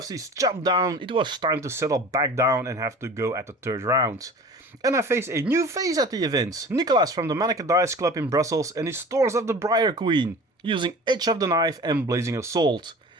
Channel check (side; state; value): both; normal; correlation 0.40